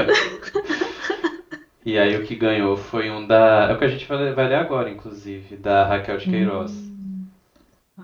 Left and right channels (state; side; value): identical; both; correlation 1.00